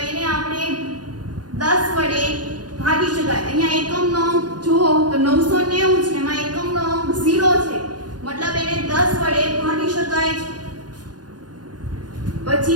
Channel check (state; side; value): late; left; 0.69 ms